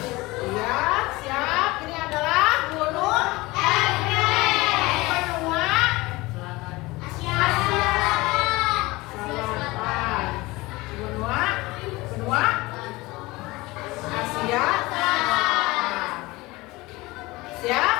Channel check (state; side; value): quieter; right; 21.4 dB